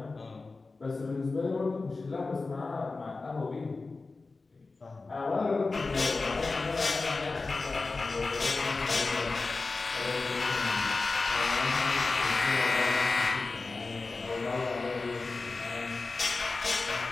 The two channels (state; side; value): quieter; right; 3.8 dB